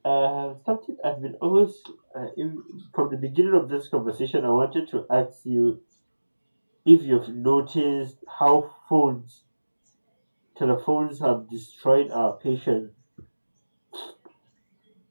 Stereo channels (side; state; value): both; inverted; correlation -1.00